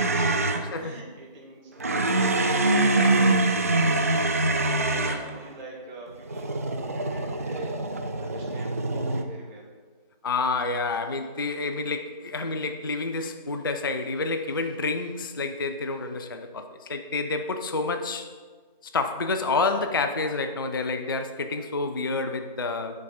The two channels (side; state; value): both; inverted; correlation -0.34